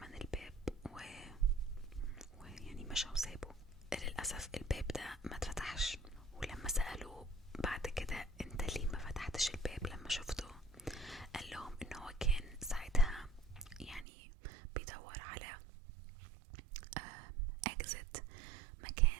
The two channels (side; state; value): left; drops out; at 14.1 s